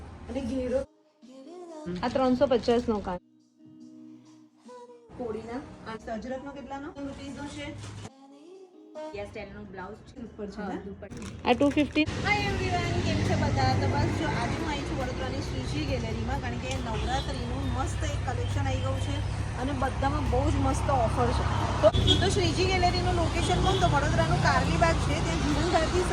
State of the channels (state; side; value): identical; both; correlation 1.00